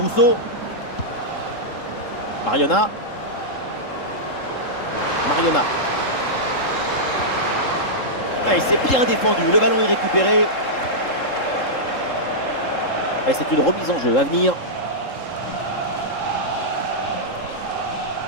Mariona. Mariona. Ah, et c'est bien défendu, le ballon est récupéré. Et c'est une remise en jeu à venir.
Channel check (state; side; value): late; right; 3.7 ms